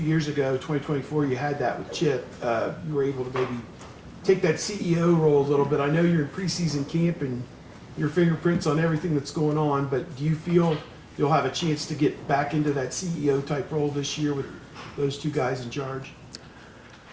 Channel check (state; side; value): identical; both; correlation 1.00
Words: years ago, 2024, you had that with Chip. You were able to maybe take that CEO role a little bit. I know you're in preseason camp and your fingerprints on everything that's going on, but do you feel you'll have a chance to get back into that CEO type role this year with those two guys in charge?